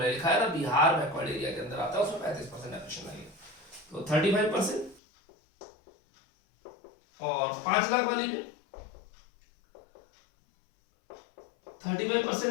लिखा है ना, बिहार बैकवर्ड एरिया के अंदर आता है, उसमें 35% डेप्रिसिएशन लगेगा। तो 35%। और 5 लाख वाली में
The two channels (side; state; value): right; drops out; at 5.0 s